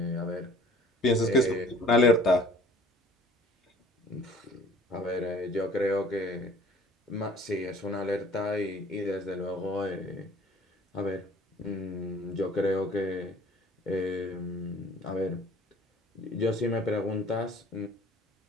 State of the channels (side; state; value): both; normal; correlation 0.51